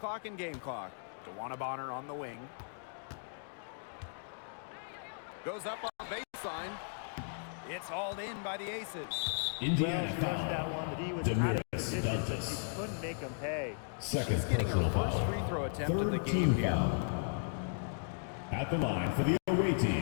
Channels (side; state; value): right; silent; digital silence